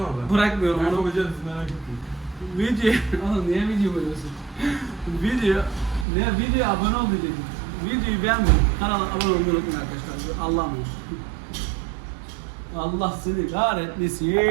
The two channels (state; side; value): drops out; left; at 6.1 s